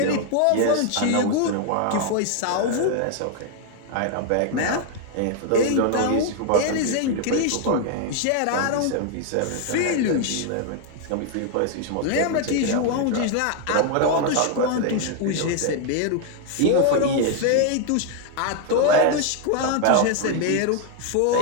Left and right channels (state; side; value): different; both; correlation 0.00